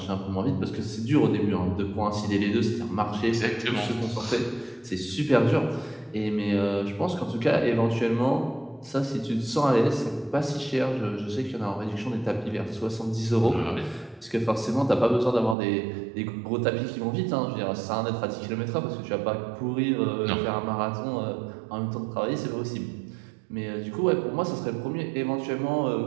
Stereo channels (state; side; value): drops out; left; at 15.6 s